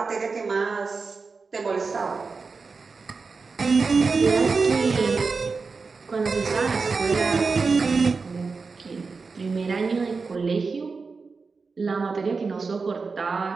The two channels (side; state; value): left; quieter; 4.5 dB